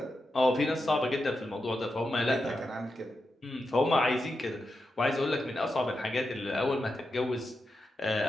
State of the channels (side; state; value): both; normal; correlation 0.88